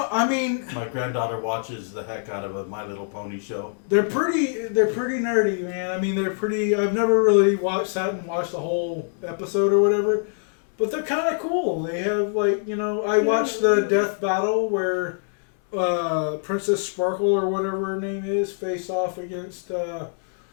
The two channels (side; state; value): right; silent; digital silence